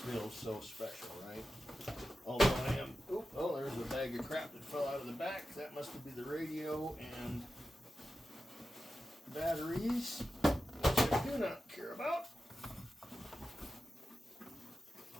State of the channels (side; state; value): both; normal; correlation 0.92